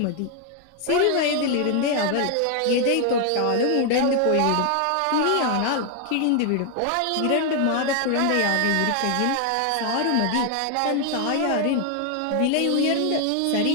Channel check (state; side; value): different; both; correlation 0.00